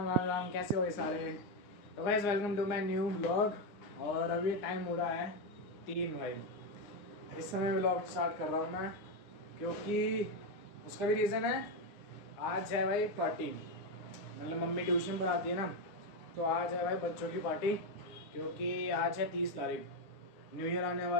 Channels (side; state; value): right; late; 9.6 ms